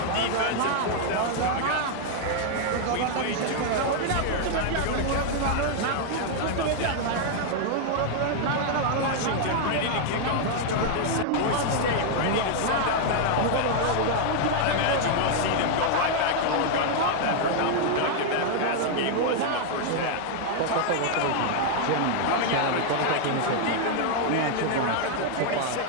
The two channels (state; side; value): different; both; correlation 0.00